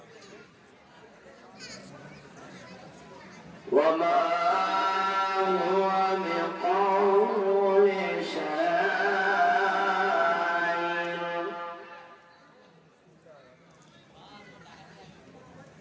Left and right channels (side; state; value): both; identical; correlation 1.00